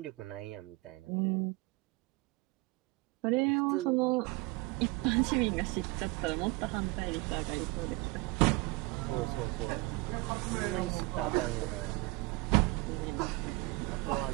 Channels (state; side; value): quieter; left; 23.6 dB